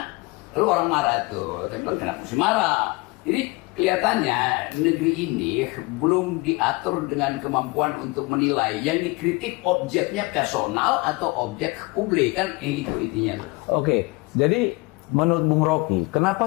Lalu orang marah tuh, saya bilang kenapa sih marah? Jadi kelihatannya negeri ini belum diatur dengan kemampuan untuk menilai yang dikritik objeknya personal atau objek publik, kan itu intinya. Oke, jadi menurut Bung Rocky, kenapa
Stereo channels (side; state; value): right; quieter; 25.0 dB